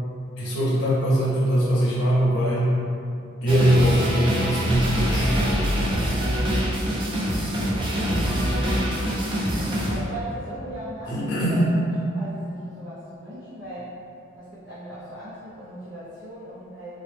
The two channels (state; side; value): normal; both; correlation 0.76